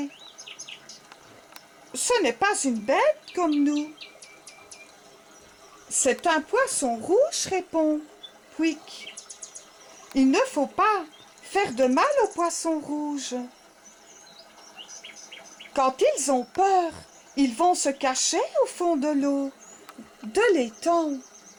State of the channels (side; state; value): both; identical; correlation 1.00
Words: Ce n'est pas une bête comme nous. C'est un poisson rouge, répond Pouic. Il ne faut pas faire de mal aux poissons rouges. Quand ils ont peur, ils vont se cacher au fond de l'eau, de l'étang.